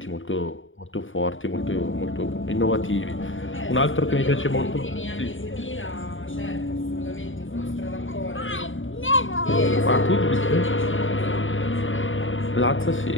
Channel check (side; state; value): right; late; 0.57 ms